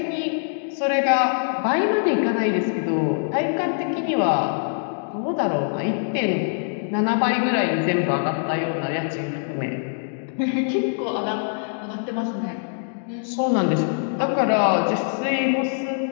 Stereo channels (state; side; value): silent; right; digital silence